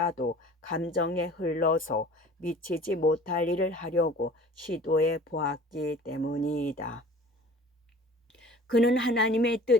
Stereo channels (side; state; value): both; normal; correlation 0.46